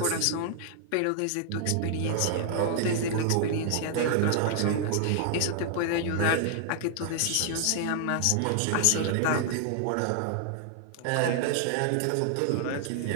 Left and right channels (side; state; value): both; different; correlation 0.00